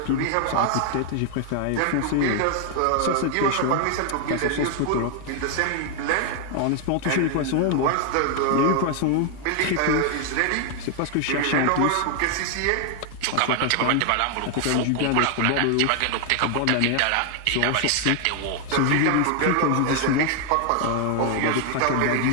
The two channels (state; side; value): different; both; correlation 0.00